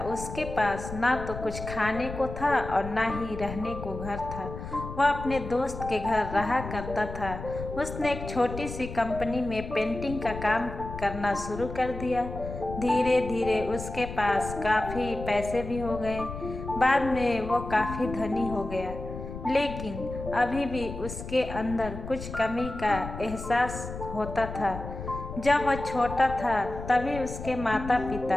उसके पास ना तो कुछ खाने को था और ना ही रहने को घर था। वह अपने दोस्त के घर रहा करता था। उसने एक छोटी सी कंपनी में पेंटिंग का काम करना शुरू कर दिया। धीरे धीरे उसके पास काफ़ी पैसे भी हो गए। बाद में वो काफ़ी धनी हो गया, लेकिन अभी भी उसके अंदर कुछ कमी का एहसास होता था। जब वह छोटा था तभी उसके माता पिता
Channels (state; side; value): noise; left; rumble, 9 dB below the sound